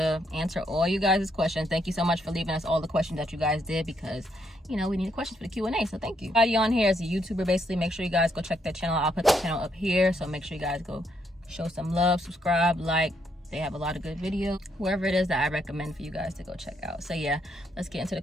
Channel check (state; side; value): normal; both; correlation 0.75